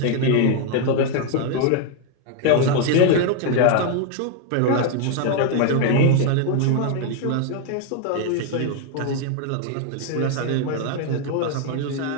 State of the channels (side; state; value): both; different; correlation 0.00